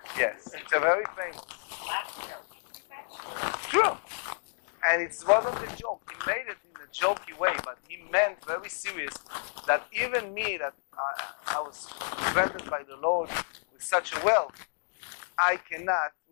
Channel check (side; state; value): right; silent; digital silence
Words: yes. It's a very famous. True. And it wasn't a joke. He made it in a jokey way, but he meant very serious that even me, that I was granted by the Lord with such a wealth, I cannot,